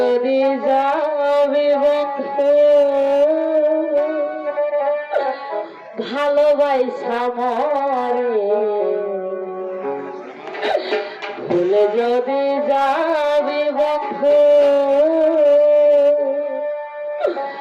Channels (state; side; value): identical; both; correlation 1.00